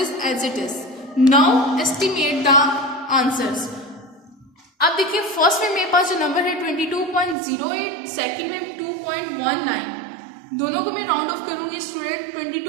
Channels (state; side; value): drops out; left; at 7.4 s